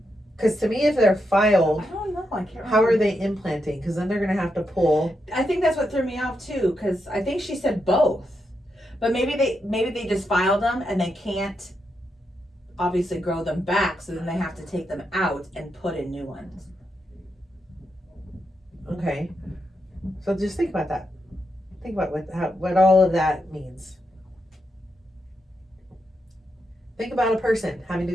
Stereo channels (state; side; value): normal; both; correlation 0.84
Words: Because to me, if they're filed, I don't know. I can't remember. how are they implanting? Because then they're going to have to pull. I think that's what threw me off too, because I think she said both. But maybe they just filed them and they can't obviously grow them back, so then they have to take them out and put in new ones. Okay. So just think about that. Think about what all of that means. Think about a person having to